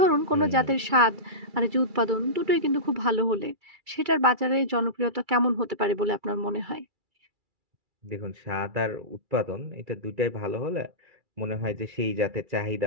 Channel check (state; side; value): late; left; 2.3 ms